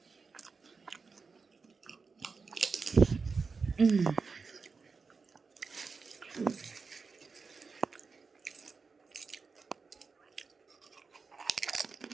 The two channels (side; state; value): left; quieter; 4.8 dB